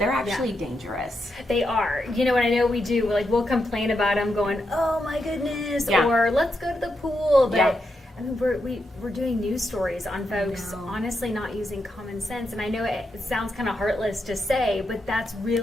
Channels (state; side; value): normal; both; correlation 0.84